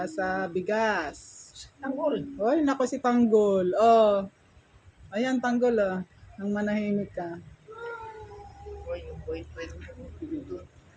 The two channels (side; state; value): both; identical; correlation 1.00